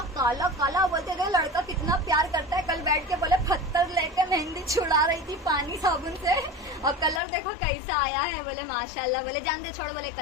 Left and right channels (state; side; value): drops out; right; at 7.2 s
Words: काला काला, बोलते थे लड़का कितना प्यार करता है। कल बैठ के बोले पत्थर लेके मेहंदी छुड़ा रही थी पानी साबुन से, और कलर देखो कैसा आया है। बोले माशाल्लाह, बोले जान दे छोड़, बोले